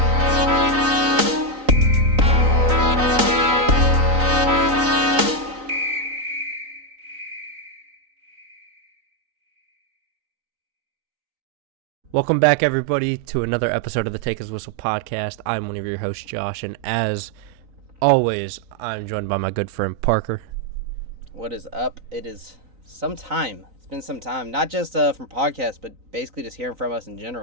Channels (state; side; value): late; left; 3.9 ms